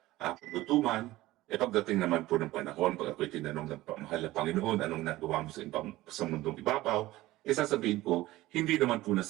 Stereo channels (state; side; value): quieter; left; 17.4 dB